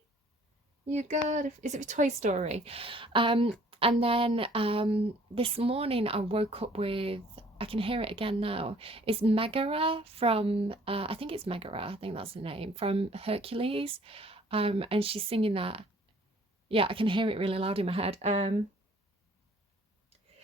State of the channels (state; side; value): normal; both; correlation 0.57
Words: You got, is it Toy Story? And then this morning I woke up with, I can hear it again now. It's Megara from, I think it's Megara, I think that's the name, from Hercules. And she's singing that. Yeah, I can hear it really loud in my head. That